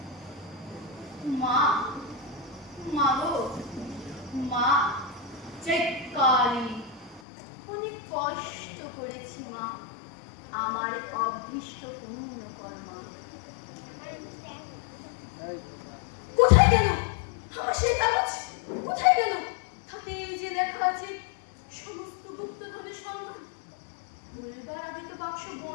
माँ মাগো মা চেকালি অনেক কষ্ট করেছি মা আমার অভীষ্ট পূর্ণ কর্মা। কোথায় গেল আমার সেই কাগজ? কোথায় গেল? তাতে যে লেখা আছে সমস্ত গুপ্তধনের সংখ্যা। বলবার আগে তো বাক্স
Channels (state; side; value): drops out; right; at 7.2 s